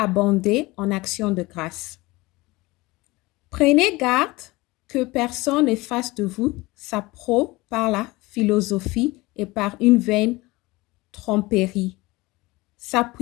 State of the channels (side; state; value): right; quieter; 21.5 dB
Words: en actions de grâce. Prenez garde que personne ne fasse de vous sa proie par la philosophie et par une vaine tromperie,